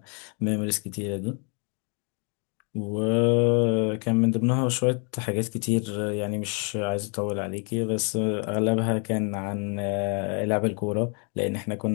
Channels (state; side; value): quieter; right; 38.4 dB